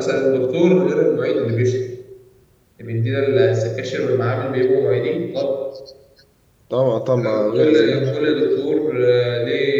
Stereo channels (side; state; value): both; identical; correlation 1.00